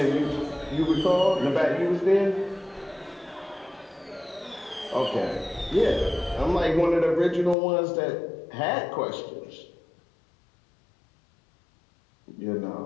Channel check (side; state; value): right; drops out; at 7.6 s